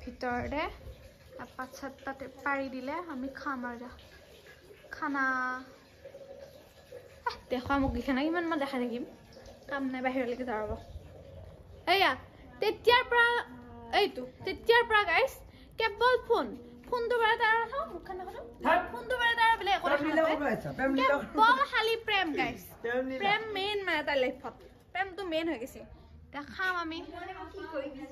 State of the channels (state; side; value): identical; both; correlation 1.00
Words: ভিতৰতে পাত চাত পাৰি দিলে আমি খাম আৰু খানা দেখুৱা মোক দিখা নাই ইমান মই দেখাই থাকিম কাম নাই বাহিৰলৈকে যাব এয়া তেতিয়াৰ পৰা গাইছ কেৱল ফোনটো বাৰে তাৰ মুখখন দেখোন ফোনটো বাৰে তাৰ বোলে একো কেৱল খালি প্ৰেম গাইছ প্ৰেম মেইন মানে তাৰ লাইফত প্ৰেমটো মেইন হৈ গৈছে এতিয়া খাম আমি